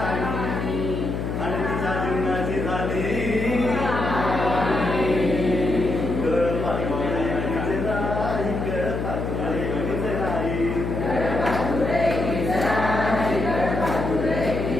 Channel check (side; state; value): left; noise; hum, 3 dB below the sound